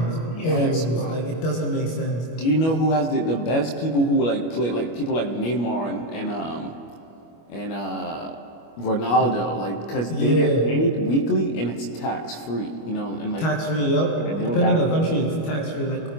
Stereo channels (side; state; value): right; late; 25 ms